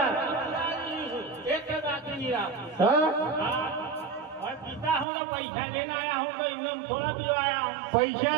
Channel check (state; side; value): drops out; left; at 5.1 s